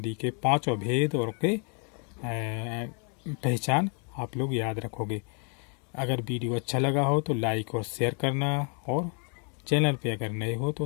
के पांचों भेद और के पहचान आप लोग याद रखोगे। अगर वीडियो अच्छा लगा हो तो लाइक और शेयर करना, और चैनल पे अगर नए हो तो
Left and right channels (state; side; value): quieter; right; 39.3 dB